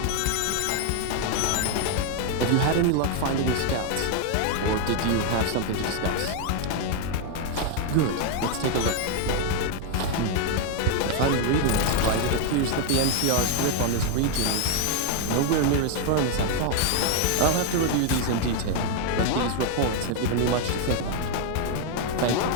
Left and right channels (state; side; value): different; both; correlation 0.01